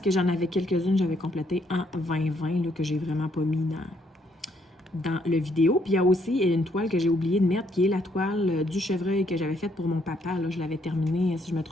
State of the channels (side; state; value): both; normal; correlation 0.70